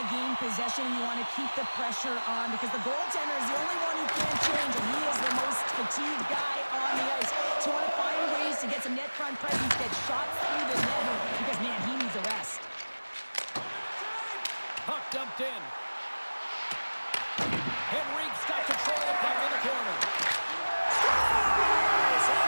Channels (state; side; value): inverted; both; correlation -1.00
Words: gain possession, you want to keep the pressure on, because the goaltender is the only one who can't change, and he is the most fatigued guy on the ice. So you want to find ways to get some net front presence, get shots through the net, because, man, he needs a rest. Puck dumped in. Henrique's got control of the puck in the corner. Scores!